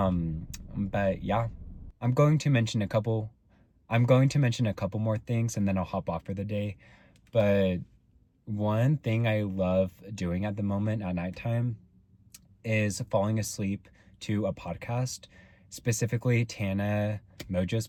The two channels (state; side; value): identical; both; correlation 1.00